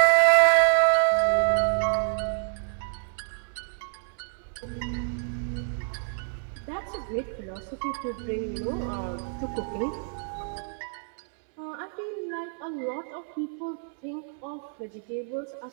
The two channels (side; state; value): left; silent; 59 dB below the other